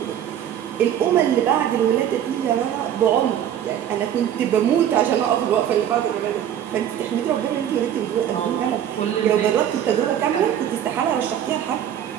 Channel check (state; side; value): quieter; left; 10.2 dB